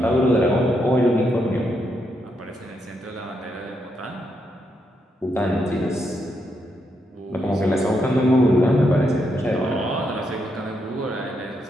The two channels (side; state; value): both; normal; correlation 0.80